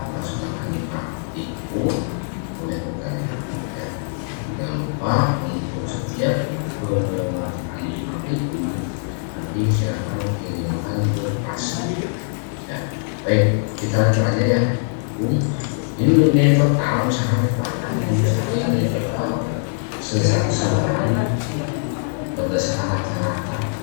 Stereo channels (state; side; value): silent; right; 61 dB below the other